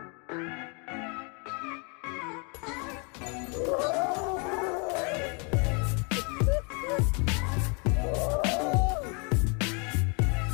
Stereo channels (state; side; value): quieter; right; 34.6 dB